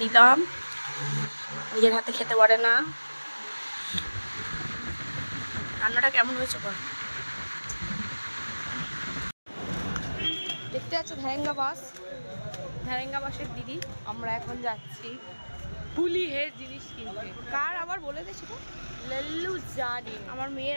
দিলাম, নিজের হাতে খেতে পারে না। রান্নাটা কেমন হয়েছে বল? দেখতে পাচ্ছ ভ্যারেঙ্গা বাসের দিদি। আমরা এখন যাচ্ছি ফুলি হেড জিনিস কিনতে। কার আবার বলে দে সেটা। লল্লু জানি আমার মেয়ের,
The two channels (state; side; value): inverted; both; correlation -1.00